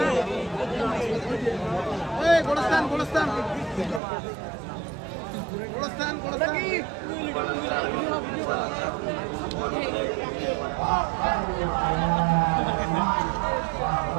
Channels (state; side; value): drops out; left; at 4.0 s